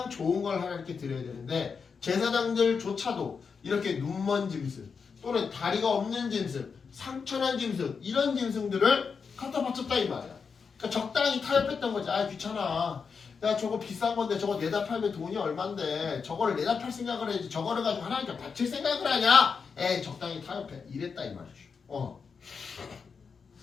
좋은 걸 하나님께 드려야 되는데 제사장들조차도 이렇게 눈 먼 짐승 또는 다리가 없는 짐승, 상처난 짐승 이런 짐승들을 갖다 바쳤다 이 말이야. 그러니까 적당히 타협했던 거지. 아 귀찮아. 야 저거 비싼 건데 저거 내다 팔면 돈이 얼만데 저거를 내다 팔 생각을 해야지 저거를 가지고 하나님께 바칠 생각을 하냐? 에이 적당히 타협해. 이랬다 이 말이죠.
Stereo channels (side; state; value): right; quieter; 5.6 dB